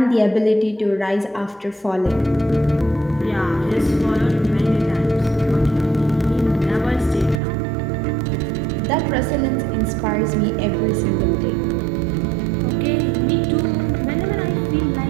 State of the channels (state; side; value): drops out; left; at 7.4 s